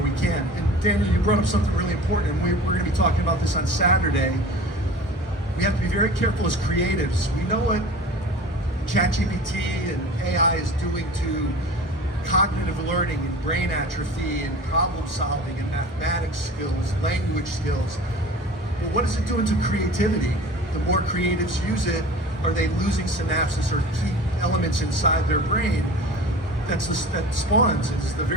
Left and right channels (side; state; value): both; normal; correlation 0.39